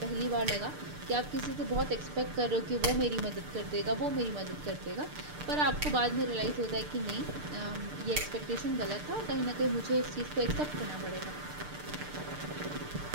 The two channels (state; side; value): late; left; 6.7 ms